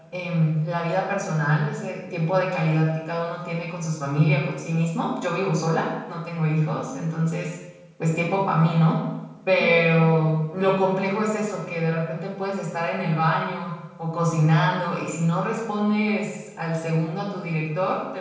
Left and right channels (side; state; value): both; identical; correlation 1.00